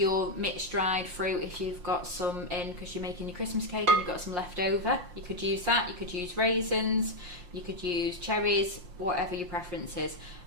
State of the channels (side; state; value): left; late; 5.7 ms